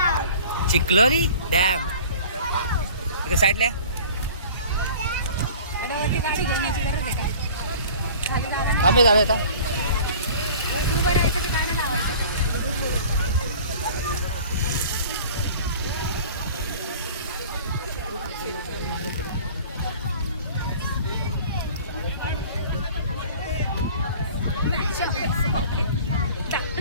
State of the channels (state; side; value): inverted; both; correlation -0.45